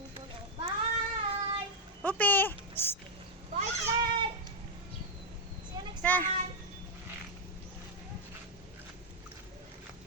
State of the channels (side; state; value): both; normal; correlation -0.01